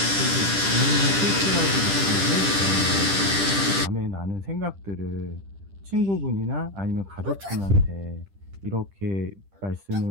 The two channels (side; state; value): left; late; 10 ms